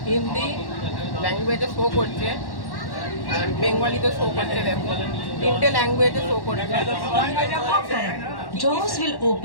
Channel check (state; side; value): late; right; 1.1 ms